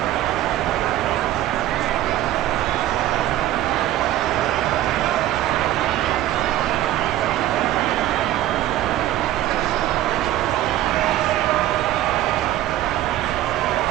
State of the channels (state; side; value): quieter; left; 13.8 dB